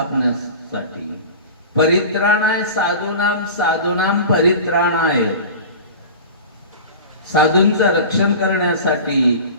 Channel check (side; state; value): both; inverted; correlation -0.35